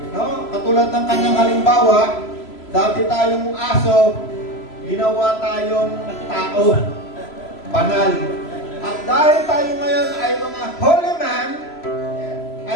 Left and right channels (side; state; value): right; late; 3.0 ms